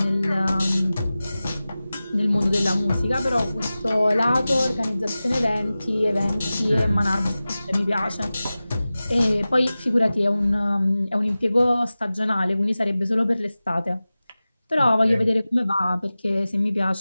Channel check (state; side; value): inverted; both; correlation -0.96